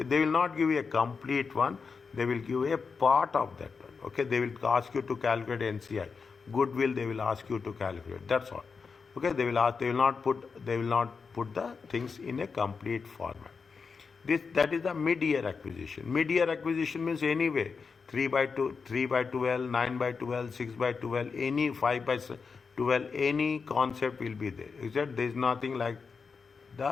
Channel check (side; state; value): right; quieter; 5.2 dB